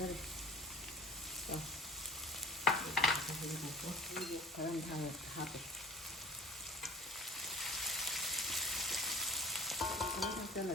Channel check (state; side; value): normal; both; correlation 0.45